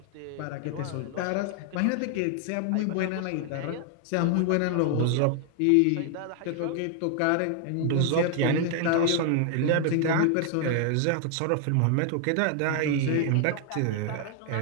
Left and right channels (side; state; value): both; different; correlation 0.00